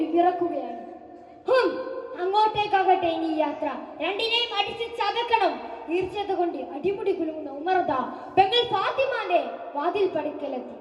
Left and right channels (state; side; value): identical; both; correlation 1.00